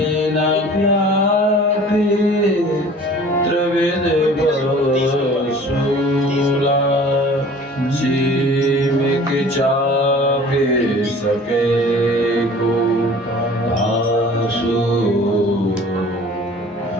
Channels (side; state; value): both; normal; correlation 0.46